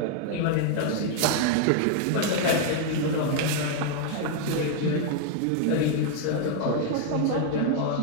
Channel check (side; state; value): both; different; correlation 0.00